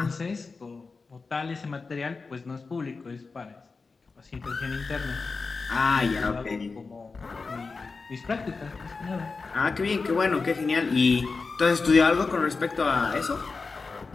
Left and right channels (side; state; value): right; quieter; 4.3 dB